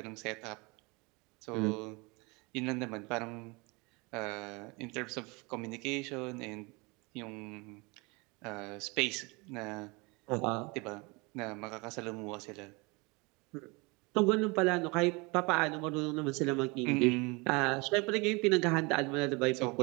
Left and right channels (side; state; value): left; quieter; 27.4 dB